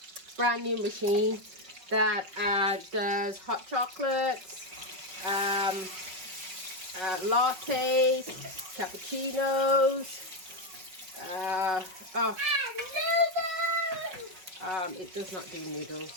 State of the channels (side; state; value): left; late; 5.4 ms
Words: machine that does hot chocolates, lattes, cappuccinos. It does not do